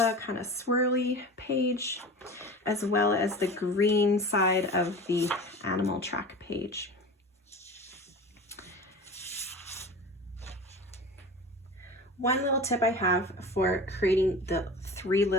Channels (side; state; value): both; normal; correlation 0.34